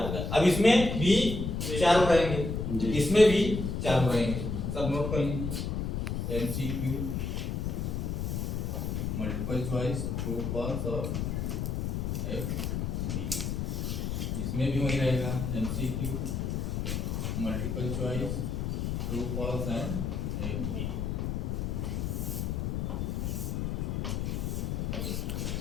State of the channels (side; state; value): left; noise; rumble, 1 dB below the sound